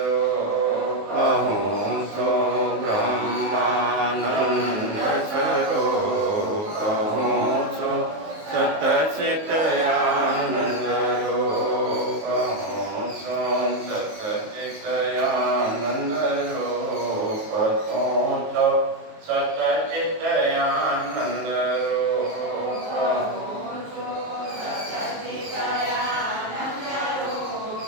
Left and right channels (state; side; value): late; left; 19 ms